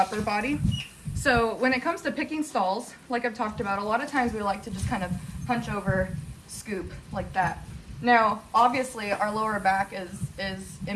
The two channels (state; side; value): identical; both; correlation 1.00